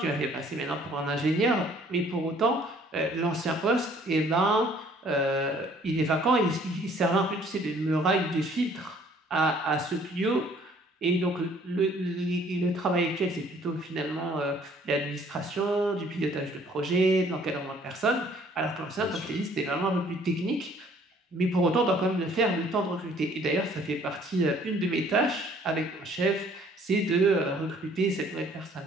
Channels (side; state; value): both; normal; correlation 0.58